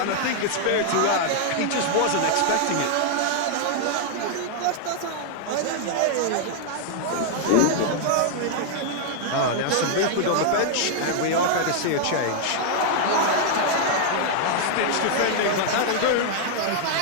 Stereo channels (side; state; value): both; different; correlation 0.00